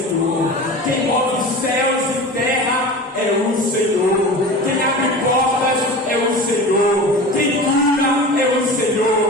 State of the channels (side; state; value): both; normal; correlation 0.33